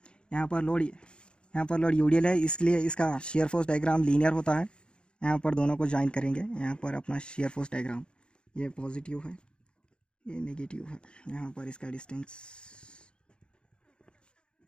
यहाँ पर लोड यूडीएल है, इसलिए इसका शेयर फोर्स डायग्राम लीनियर होता है। यहाँ पर दोनों को ज्वाइन करेंगे, यहाँ पर अपना शेयर फोर्स डायग्राम, ये पॉजिटिव है ये नेगेटिव है। यहाँ पर इसका डिस्टेंस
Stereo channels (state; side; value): late; right; 0.053 ms